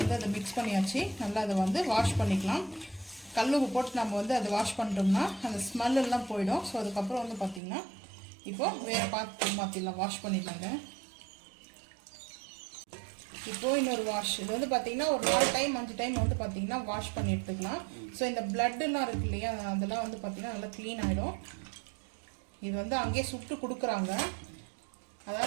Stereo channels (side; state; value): left; drops out; at 7.6 s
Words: அதை மிக்ஸ் பண்ணியாச்சு. நல்லா அதை வந்து வாஷ் பண்ணிக்கலாம். கல் உப்பு போட்டு நம்ம வந்து அதை வாஷ் பண்ணிட்டோம்னா அந்த ஸ்மெல் எல்லாம் போயிடும். ஸோ அதுக்கப்புறம் வந்து பார்த்தீங்கன்னா இப்போ வேறு பாத்திரம் மாற்றிடலாம், வாஷ் பண்ணிடலாங்க. இப்போ இன்னொரு வாஷ், இது வந்து பார்த்தீங்கன்னா ஒரு 4 டைம் 5 டைம் வந்து பார்த்தீங்கன்னா வாஷ் பண்ணி எடுத்துக்கலாம். ஸோ இந்த பிளட்டுலாம் இருக்கு இல்லையா, அதெல்லாம் வந்து பார்த்தீங்கன்னா நல்லா க்ளீன் ஆகிடும். இது வந்து அங்கேயே சுட்டு கொடுக்குறாங்க.